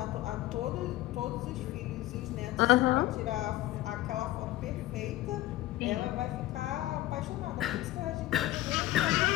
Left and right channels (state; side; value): quieter; right; 16.3 dB